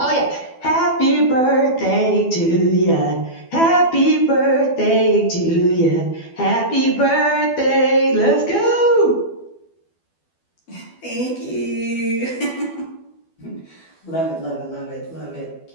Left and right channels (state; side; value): late; right; 12 ms